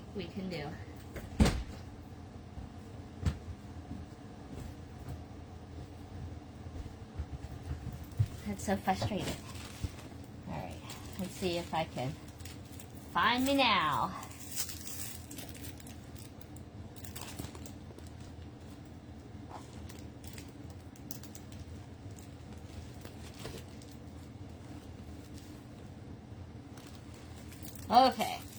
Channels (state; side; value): identical; both; correlation 1.00